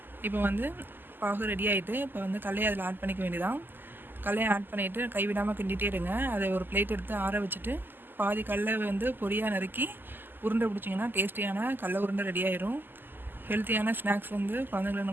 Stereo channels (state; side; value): late; left; 0.092 ms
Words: இப்போ வந்து பாகு ரெடி ஆகிட்டு இப்போ வந்து கடலையை அதில் ஆட் பண்ணிக்க வேண்டியதான். கடலையை ஆட் பண்ணிவிட்டு கைவிடாமல் கிண்டிகிட்டே இருங்க. அதை ஒரு பிளேட் எடுத்து ஆற வச்சுட்டு பாதி கடலை வந்து பொடியாக நறுக்கி உருண்டை பிடிச்சிங்கன்னா டேஸ்டியான கடலை உருண்டை ரெடி ஆயிரும். ஹெல்த்தியான ஸ்நாக்ஸ் வந்து குழந்தைங்களுக்கு